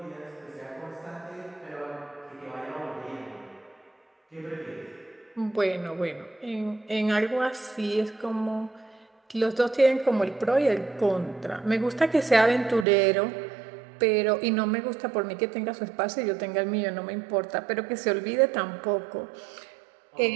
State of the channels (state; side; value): drops out; left; at 12.9 s